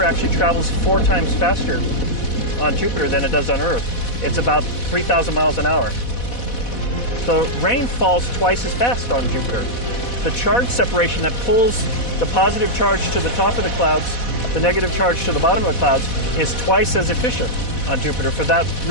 actually travels 4 times faster on Jupiter than it does on Earth. It's about 3,000 miles an hour. The rain falls twice as fast on Jupiter. The charge separation that pulls the positive charge to the top of the clouds, the negative charge to the bottom of the clouds, is twice as efficient on Jupiter for that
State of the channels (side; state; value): right; late; 4.1 ms